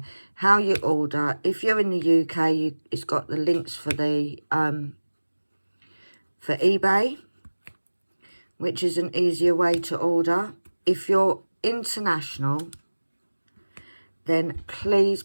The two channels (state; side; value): inverted; both; correlation -1.00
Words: How you order. If you're in the UK, it's got the links for the for eBay, which is an easier way to order. If you're international, then please,